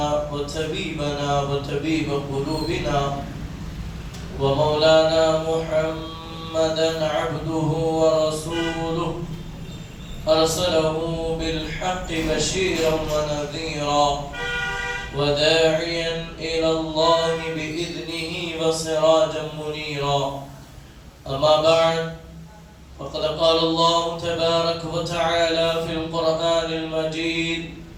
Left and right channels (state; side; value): identical; both; correlation 1.00